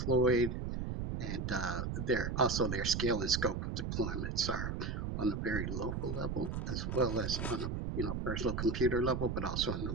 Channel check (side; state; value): right; noise; rumble, 3 dB below the sound